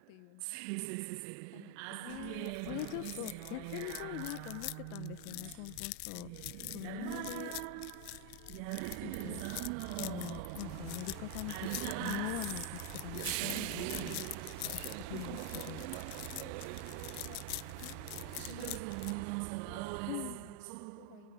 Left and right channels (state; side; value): different; both; correlation 0.01